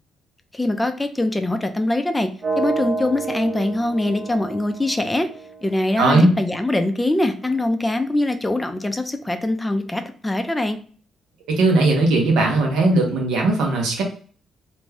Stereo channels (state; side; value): normal; both; correlation 0.83